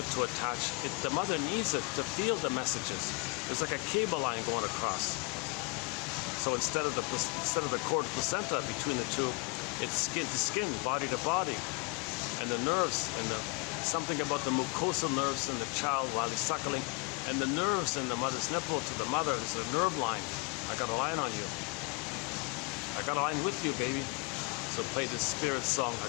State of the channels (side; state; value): right; quieter; 28.9 dB